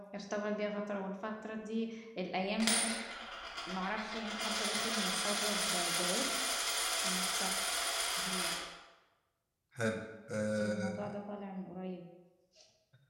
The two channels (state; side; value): identical; both; correlation 1.00